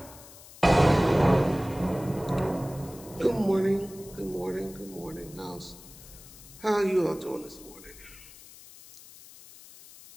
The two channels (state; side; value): noise; left; hiss, 19 dB below the sound